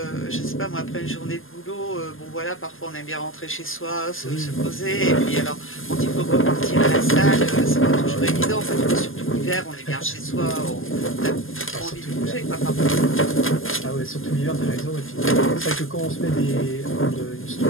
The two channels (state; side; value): late; right; 0.59 ms